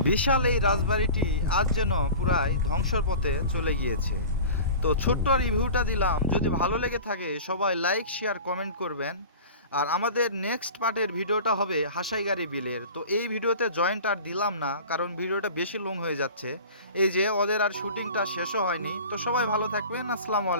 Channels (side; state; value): both; inverted; correlation -0.38